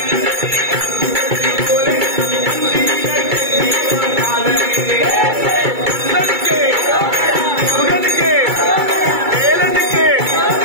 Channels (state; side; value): late; left; 2.3 ms